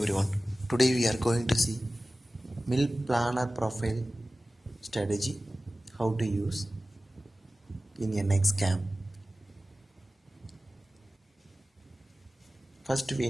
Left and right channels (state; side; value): normal; both; correlation 0.96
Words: Today we are going to see mill planner profile strategy, how to use in NX cam. First we